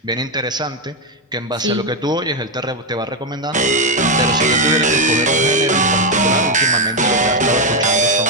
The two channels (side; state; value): both; normal; correlation 0.06